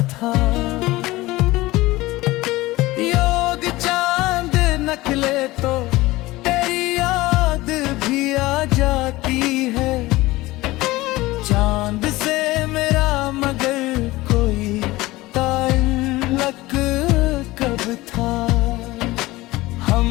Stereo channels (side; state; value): right; quieter; 19.3 dB